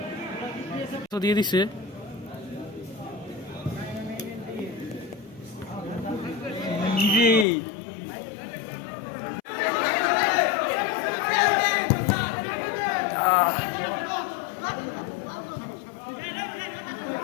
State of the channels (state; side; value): drops out; right; at 7.5 s